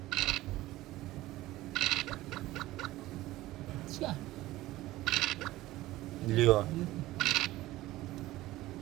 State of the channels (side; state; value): left; quieter; 17.0 dB